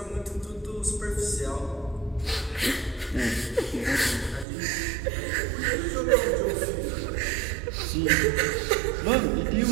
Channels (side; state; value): left; drops out; at 4.5 s